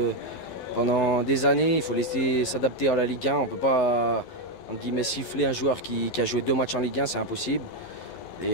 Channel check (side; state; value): right; late; 11 ms